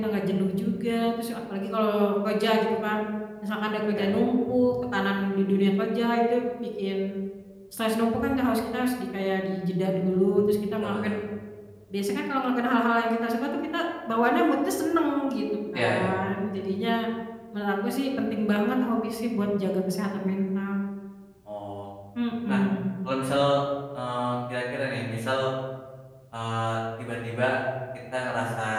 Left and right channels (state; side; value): identical; both; correlation 1.00